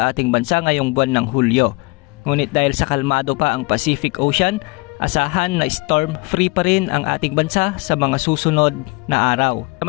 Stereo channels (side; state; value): right; quieter; 26.6 dB